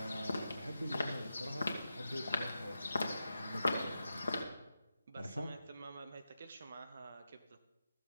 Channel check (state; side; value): inverted; both; correlation -0.90